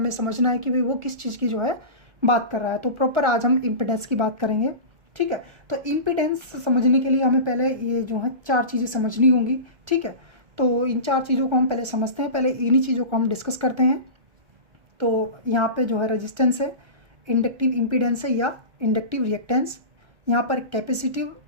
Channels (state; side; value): late; left; 1.3 ms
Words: समझना है कि भाई वो किस चीज़ की जो है बात कर रहा है। तो प्रॉपर आज हम इम्पीडेंस की बात करेंगे। ठीक है, तो इम्पीडेंस समझने के लिए हमें पहले ये जो है चार चीज़ें समझनी होंगी। ठीक है, तो इन चार चीज़ों को हम पहले समझते हैं, पहले इन्हीं चीज़ों को हम डिस्कस करते हैं। तो यहाँ पे जो है रेजिस्टेंस है, इंडक्टिव इम्पीडेंस है या इंडक्टिव रिएक्टेंस, यहाँ पर कैपेसिटिव